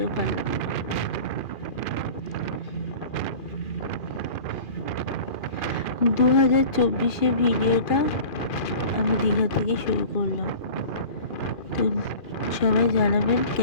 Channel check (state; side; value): late; right; 2.4 ms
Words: পারলাম না। 2024 ভিডিওটা আমি দীঘা থেকে শুরু করলাম। তো সবাই জানাবেন